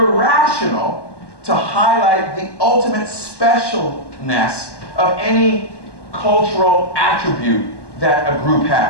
to highlight the ultimate specialness of any cultural attribute that a group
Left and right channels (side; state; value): right; late; 1.1 ms